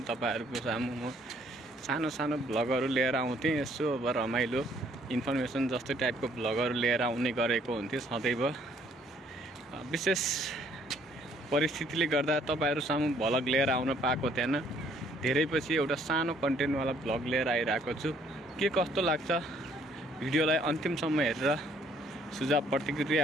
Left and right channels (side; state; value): both; normal; correlation 0.64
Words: तपाईहरुको सामु म सानो सानो ब्लगहरू लिएर आउँथेँ। यसो अब रमाइलो इन्फर्मेसन जस्तै टाइपको ब्लगहरू लिएर आउने गरेको हुन्थ्यो सदैव। विशेष परिस्थितिले गर्दा तपाईहरु सामु भ्लग लिएर आउन पाएको थिएन। धेरै पछि एउटा सानो कन्टेन्टवाला भ्लग लिएर आइरहेको छु। के कस्तो लाग्छ भिडियोलाई अन्तिमसम्म हेरेर सुझाव